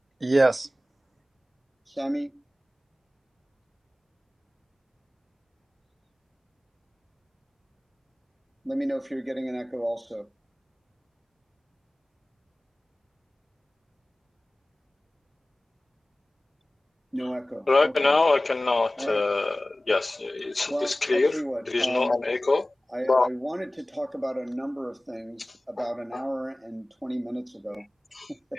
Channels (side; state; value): both; normal; correlation 0.97